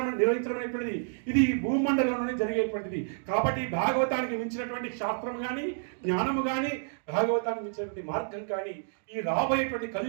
అనేటువంటిది ఇది భూమండలంలోనే జరిగేటువంటిది. కాబట్టి భాగవతానికి మించినటువంటి శాస్త్రం కానీ జ్ఞానము కానీ భాగవతానికి మించినటువంటి మార్గం కానీ ఈ రాబోయేటువంటి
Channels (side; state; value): left; silent; digital silence